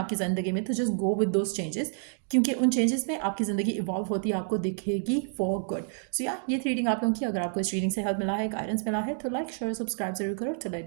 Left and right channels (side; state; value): left; silent; 59 dB below the other